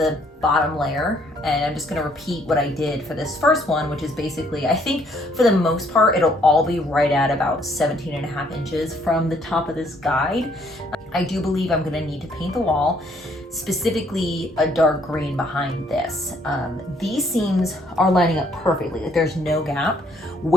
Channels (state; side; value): normal; both; correlation 0.66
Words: bottom layer, and I'm just gonna repeat what I did for this first one, which is basically, I think for the most part, it'll all be right at about 17.5 inches from the top of this guide. I do believe I'm gonna need to paint the wall, specifically a dark green behind this. These seams are lining up perfectly, like there's no gap.